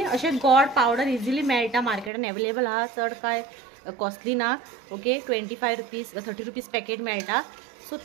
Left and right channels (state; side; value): drops out; left; at 2.1 s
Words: अशे गोड पावडर इजिली मेळटा मार्केटान अवेलेबल आहा, चड काय कॉस्टली ना. ओके 25 रुपीज 30 रुपीज पॅकेट मेळटा. सो